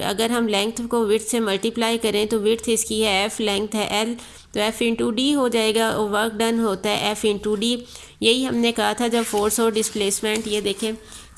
हम लेंथ को विड्थ से मल्टीप्लाई करें तो विड्थ इसकी है F, लेंथ है L, तो F इंटू डी हो जाएगा और वर्क डन होता है F इंटू डी। यही हमने कहा था जब फोर्स और डिस्प्लेसमेंट ये देखें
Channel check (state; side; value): identical; both; correlation 1.00